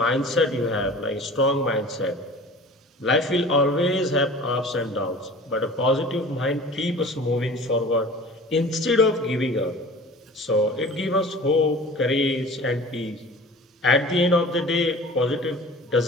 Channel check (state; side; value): normal; both; correlation 0.42